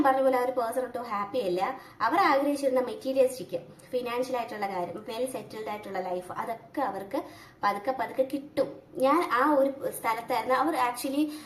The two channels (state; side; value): identical; both; correlation 1.00